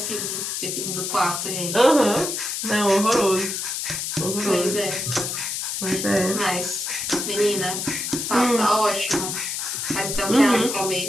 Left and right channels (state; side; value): noise; left; hiss, 3 dB below the sound